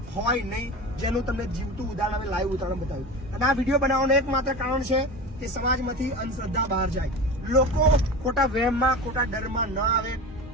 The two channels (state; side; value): normal; both; correlation 0.29